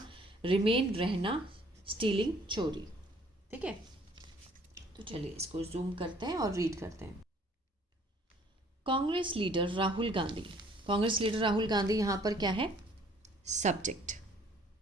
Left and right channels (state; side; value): normal; both; correlation 0.58